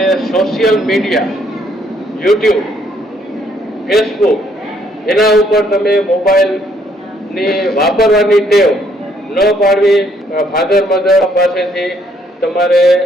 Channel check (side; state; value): both; normal; correlation 0.68